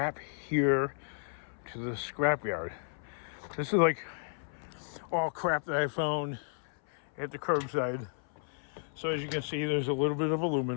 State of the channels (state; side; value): silent; right; 56 dB below the other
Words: here to the scrapyard? This is like all crap that I found at the curbside. So as you can see, there's a little bit of